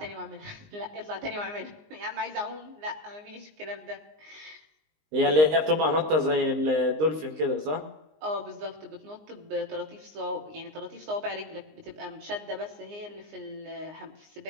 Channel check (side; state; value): left; late; 19 ms